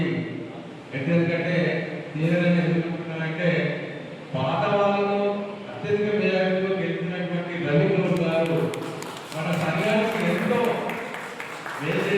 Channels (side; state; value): both; identical; correlation 1.00